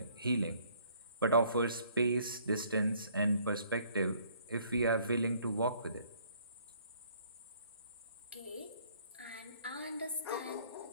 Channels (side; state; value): both; inverted; correlation -0.61